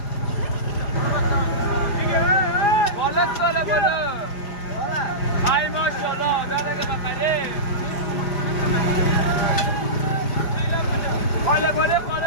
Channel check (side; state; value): right; late; 5.0 ms